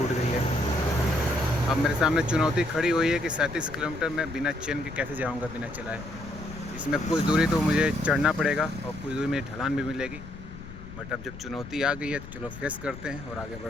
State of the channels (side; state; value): left; noise; rumble, 14 dB below the sound